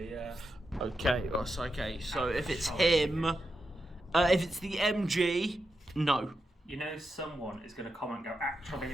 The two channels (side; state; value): both; normal; correlation 0.87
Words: yeah. Okay, okay. So if it's him, if it's the MG, no. You know, someone is going to comment and go, actually,